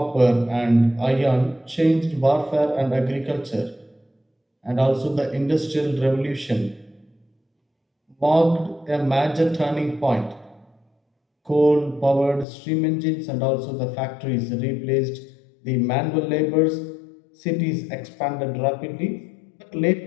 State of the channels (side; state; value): right; drops out; at 12.5 s